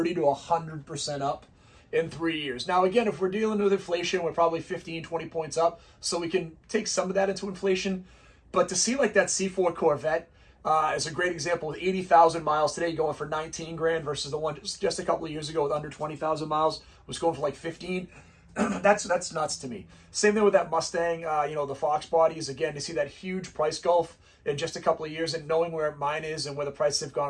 to 100% up in 3 years. Now, again, if we're dealing with inflation, we're probably 15, 20 points up, so we can take some of that into inflation. But to see like that C4 Corvette is a great example with 80,000 miles today going for 19 grand versus the one just a couple of years ago with under 20,000 miles was going for like 15. That's nuts to me. Same thing with that Mustang, you know, the Foxbodies. Again, to see that huge price gulf in just a couple of years and knowing where mine is and where the prices have gone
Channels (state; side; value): identical; both; correlation 1.00